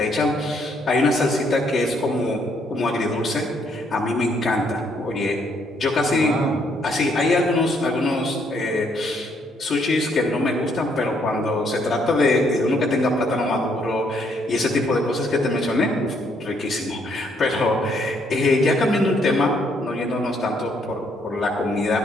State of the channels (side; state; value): both; normal; correlation 0.70